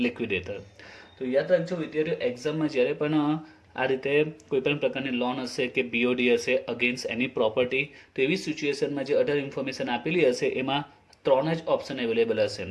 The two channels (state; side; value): identical; both; correlation 1.00